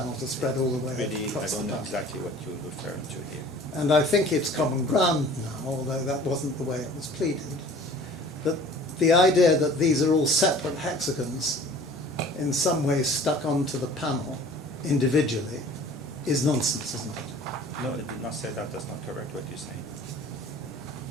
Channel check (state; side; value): normal; both; correlation 0.47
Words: are spread all the way Really, I across the don't know panel. exactly what you're referring to here. And I think it's common ground now, although that wasn't the way it was pleaded, that the idea that these are all separate hexagons in some way stuck onto the panel individually is nonsense, isn't it? No, it did not say that. That's not correct what you're saying.